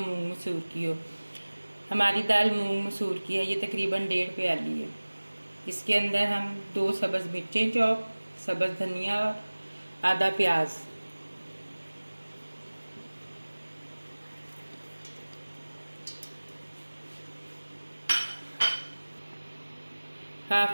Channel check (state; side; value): inverted; both; correlation -1.00